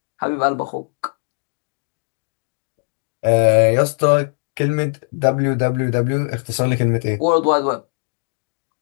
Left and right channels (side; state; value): right; silent; 62 dB below the other